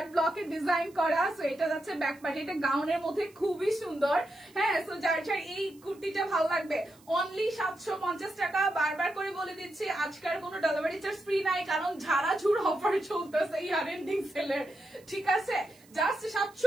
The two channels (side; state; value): right; noise; hiss, 28 dB below the sound